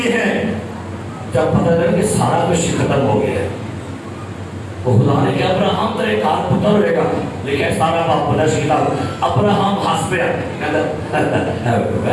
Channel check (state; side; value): identical; both; correlation 1.00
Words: ہیں، جب پتہ لگا کہ سارا کچھ ختم ہو گیا ہے، تو خدا نے کہا ابراہم تیرے کار پتر رہے گا، لکھا ہے سارا باپ خدا کی کتاب، ابراہم ہنس پیا، کہتا